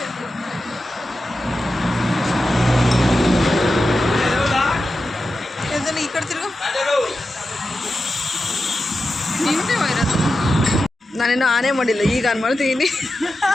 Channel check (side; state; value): both; normal; correlation 0.91